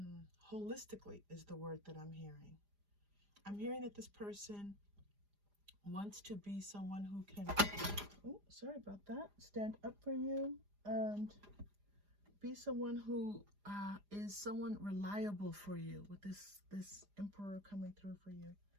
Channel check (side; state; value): left; late; 4.9 ms